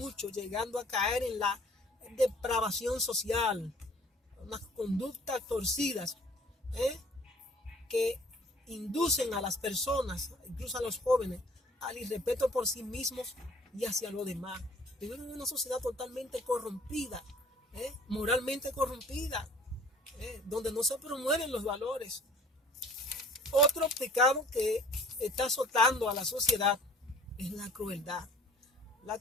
llegando a caer en la depravación social, unas conductas torcidas que inducen a las personas, incluso a los jóvenes, al irrespeto por sí mismos y hacia los demás. Vivimos en una sociedad totalmente corrompida, moralmente corrompida, donde no se promueven los valores. Otro pecado que está azotando a la sociedad es la crueldad. La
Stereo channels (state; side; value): normal; both; correlation 0.51